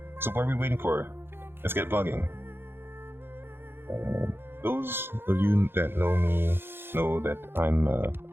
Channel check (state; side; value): late; left; 0.11 ms